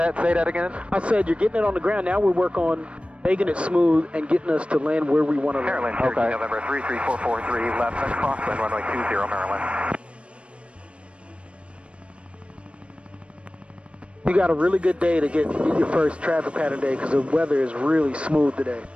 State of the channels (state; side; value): late; left; 0.060 ms